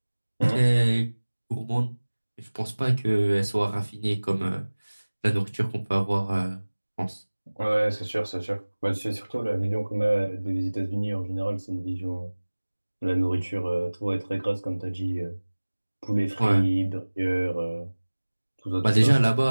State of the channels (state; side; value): inverted; both; correlation -1.00